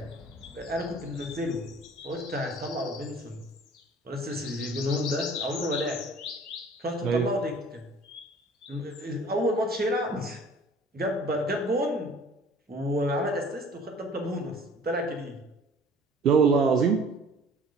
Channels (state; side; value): normal; both; correlation 0.49